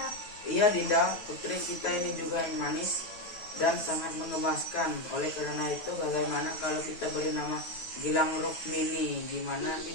Iya Dinda, putri kita ini juga yang manis dan sangat mengemaskan. Oleh karena itu, bagaimana kalau kita beri nama Gilang Rukmini? Gimana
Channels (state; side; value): late; right; 9.2 ms